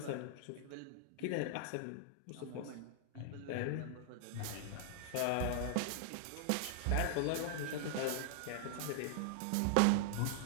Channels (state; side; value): different; both; correlation -0.01